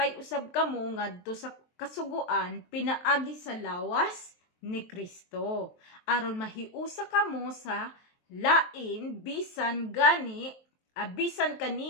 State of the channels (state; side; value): late; right; 23 ms